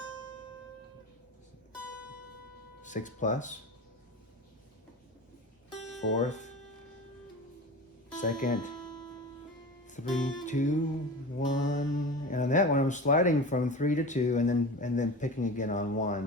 6 plus, fourth, second, 3, 2, 1, and on that one I'm sliding from 3 to 2 and then picking again on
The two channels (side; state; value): both; normal; correlation 0.31